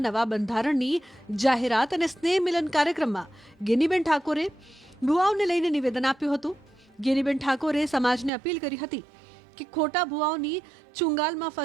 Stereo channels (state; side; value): drops out; left; at 8.3 s